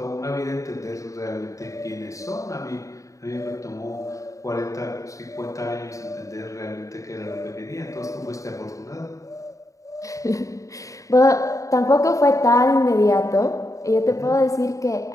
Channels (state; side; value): late; right; 0.16 ms